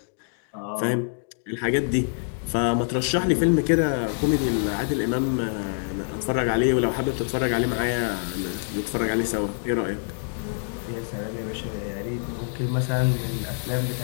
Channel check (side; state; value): right; silent; digital silence